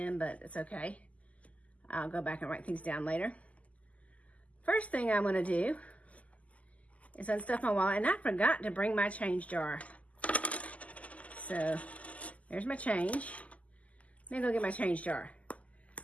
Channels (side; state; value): right; late; 0.071 ms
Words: but it's okay. I'll go back and write things down later. First thing I'm gonna do is unstuff my wallet, and I forgot to bring my change jar. So there's my change. Let me go get my change jar,